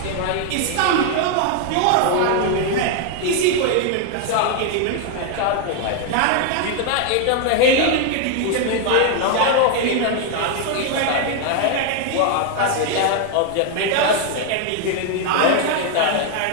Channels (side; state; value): both; different; correlation 0.00